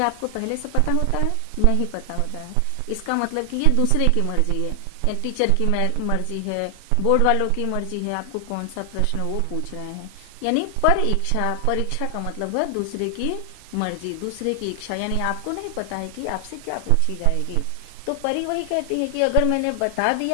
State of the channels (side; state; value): both; different; correlation 0.00